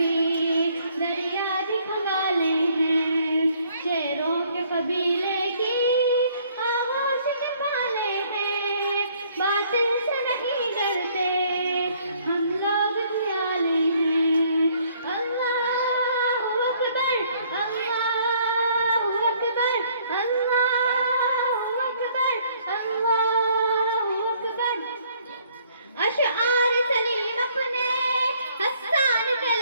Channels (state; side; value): inverted; both; correlation -0.63